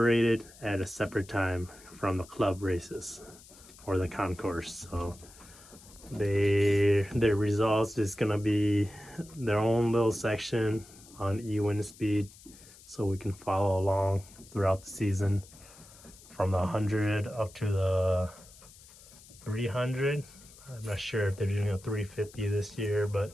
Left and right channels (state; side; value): noise; left; hiss, 22 dB below the sound